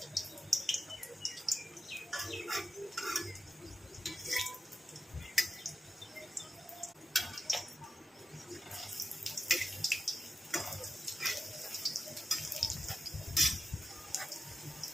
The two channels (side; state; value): both; normal; correlation 0.91